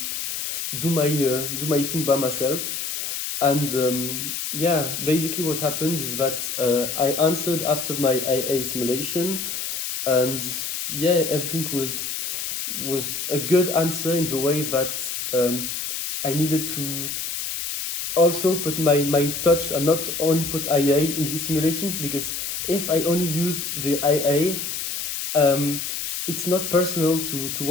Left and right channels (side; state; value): left; noise; hiss, 4 dB below the sound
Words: do my thing by myself. And yeah, basically what happened is that I answered after my IA simulation. And yeah, everything was a good answer in the way that I needed to also put my touch and not only put IA in these simulations, because if I only used the IA, it's not personal to